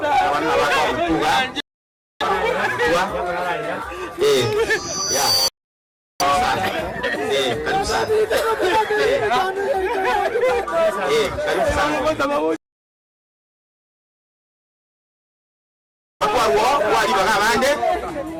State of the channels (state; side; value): identical; both; correlation 1.00